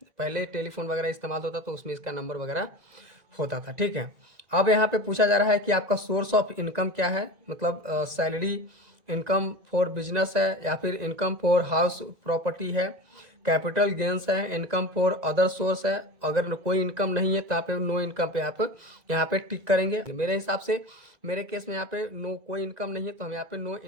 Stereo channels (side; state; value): left; late; 1.9 ms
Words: पहले टेलीफोन वगैरह इस्तेमाल होता तो उसमें इसका नंबर वगैरह होता था, ठीक है। अब यहाँ पे पूछा जा रहा है कि आपका सोर्स ऑफ इनकम क्या है, मतलब सैलरी, इनकम फॉर बिजनेस है या फिर इनकम फॉर हाउस प्रॉपर्टी है, कैपिटल गेंस है, इनकम फॉर अदर सोर्स है। अगर कोई इनकम नहीं है तो आप नो इनकम पे आप यहाँ पे टिक करेंगे। मेरे हिसाब से मेरे केस में यहाँ पे नो कोई इनकम नहीं है, तो हम यहाँ पे नो